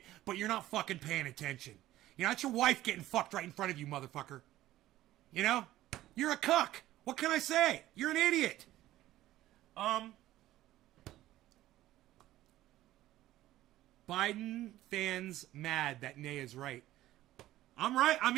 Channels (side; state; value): left; quieter; 14.9 dB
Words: but you're not fucking paying attention. You know, that's your wife getting fucked right in front of you, motherfucker. You know? You're a cuck. What can I say? You're an idiot. Biden fans mad that Nay is right. I'm right. I